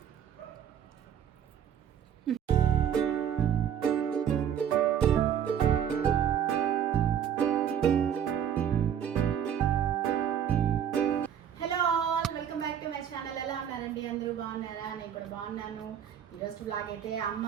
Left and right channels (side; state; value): left; quieter; 9.0 dB